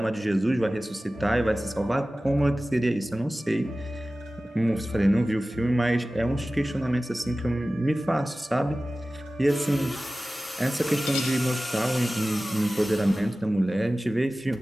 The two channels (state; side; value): normal; both; correlation 0.96